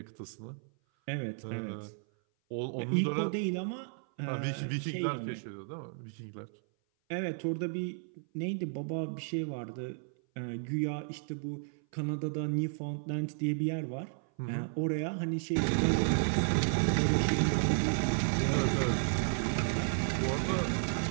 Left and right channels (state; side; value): silent; left; 56 dB below the other